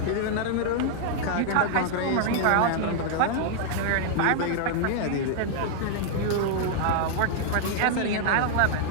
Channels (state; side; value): different; both; correlation 0.00